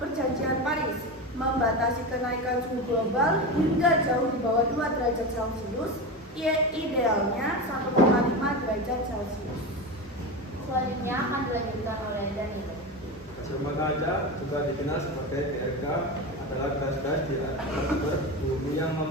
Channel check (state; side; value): normal; both; correlation 0.22